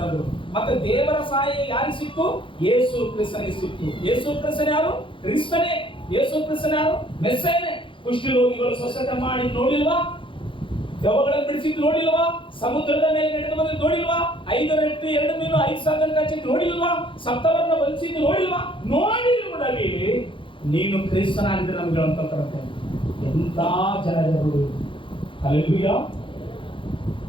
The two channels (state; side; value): late; right; 0.25 ms